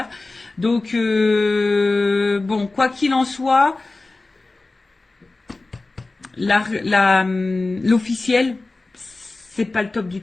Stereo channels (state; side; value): quieter; right; 3.3 dB